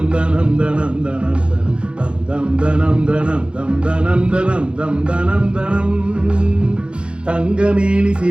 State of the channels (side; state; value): left; late; 0.056 ms